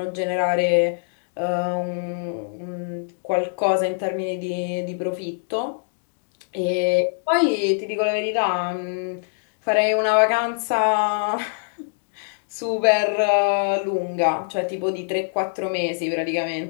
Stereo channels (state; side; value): silent; right; digital silence